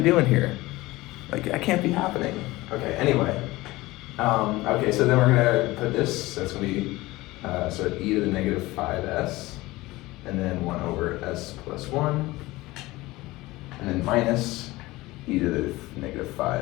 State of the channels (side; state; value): right; quieter; 19.6 dB